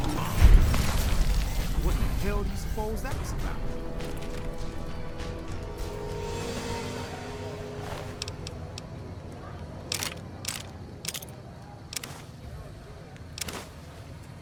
What the hell do you suppose that was about?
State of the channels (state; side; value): identical; both; correlation 1.00